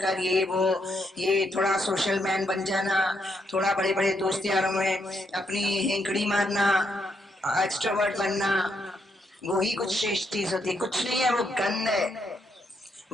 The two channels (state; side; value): normal; both; correlation 0.78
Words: ये थोड़ा सोशल मैन बन जाना, थोड़ा बड़े बड़े दोस्त यारों में अपनी हेंकड़ी मारना, एक्सट्रोवर्ट बनना, वो ही कुछ श्रेष्ठ चीज होती है। कुछ नहीं है, वो गंध है,